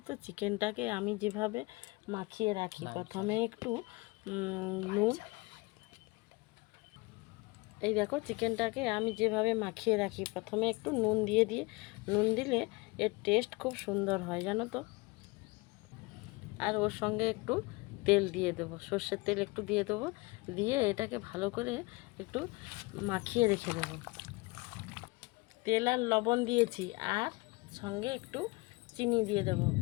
তো চিকেনটাকে আমি যেভাবে মাখিয়ে রাখি, প্রথমে একটু নুন, এই দেখো চিকেনটাকে আমি যেভাবে মাখিয়ে রাখি, প্রথমে একটু নুন দিয়ে নুন দিলে এর টেস্ট খুব সুন্দর হয় জানো তো। আর ওর সঙ্গে একটু তেল দিয়ে দেবো, সর্ষের তেল একটু দিয়ে দেবো, দিয়ে এটাকে ভালো করে একটু মাখিয়ে রেখে দেবো। তেল আর লবণ দিয়েছি, আর সঙ্গে একটু চিনি দিয়ে দেবো।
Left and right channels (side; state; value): right; quieter; 25.3 dB